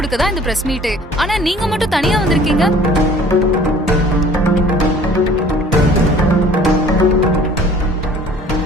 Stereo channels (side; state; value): both; normal; correlation 0.51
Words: இந்த பிரஸ் மீட். ஆனா நீங்க மட்டும் தனியா வந்திருக்கீங்க.